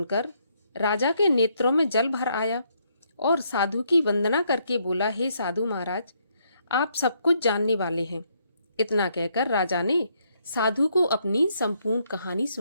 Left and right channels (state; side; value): inverted; both; correlation -0.73